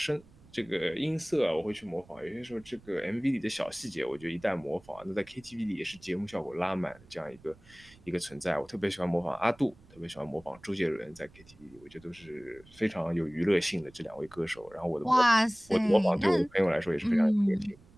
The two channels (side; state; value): right; noise; rumble, 25 dB below the sound